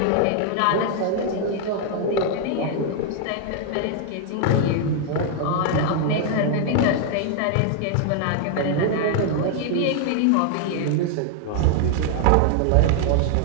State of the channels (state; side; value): different; both; correlation 0.00